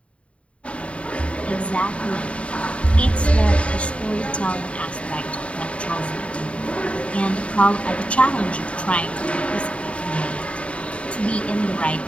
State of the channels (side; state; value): right; late; 0.062 ms